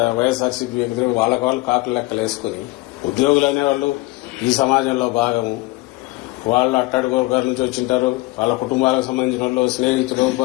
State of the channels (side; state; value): right; quieter; 21.4 dB